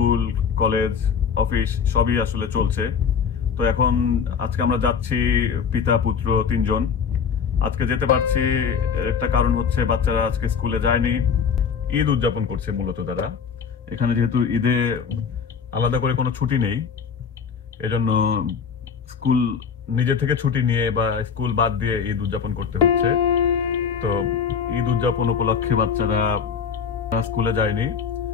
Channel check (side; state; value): right; quieter; 6.5 dB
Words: college office সবই আসলে চলছে। তো এখন আজকে আমরা যাচ্ছি পিতা পুত্র তিনজন। আজকে যেতে পারছি একটা কারণ হচ্ছে বাচ্চারা আজকে স্কুলে যায়নি, ঈদ উদযাপন করছে মূলত তারা। এখানে যেহেতু ঈদে আলাদা করে কোনো ছুটি নেই, এজন্য স্কুল নিজে থেকে ছুটি নিয়ে বা স্কুল বাদ দিয়ে ঈদ উদযাপন করতে হচ্ছে। তো ঈদ উদযাপন উপলক্ষে বাচ্চারা স্কুলে যায়নি।